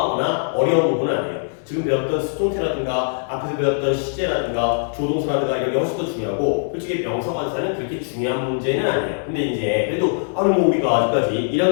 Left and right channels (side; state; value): right; silent; digital silence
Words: 어려운 부분은 아니에요. 지금 배웠던 수동태라든가 앞에서 배웠던 시제라든가 조동사라든가 이런 게 훨씬 더 중요하고 솔직히 명사 관사는 그렇게 중요한 문제는 아니에요. 근데 이제 그래도 아니 뭐 우리가 아직까지